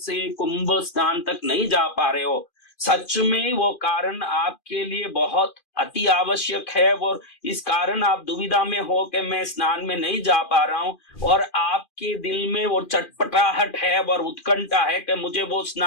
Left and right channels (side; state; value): right; late; 2.4 ms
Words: कुंभ स्नान तक नहीं जा पा रहे हो, सच में वो कारण आपके लिए बहुत अति आवश्यक है, और इस कारण आप दुविधा में हो कि मैं स्नान में नहीं जा पा रहा हूं, और आपके दिल में वो चटपटाहट है और उत्कंठा है कि मुझे वो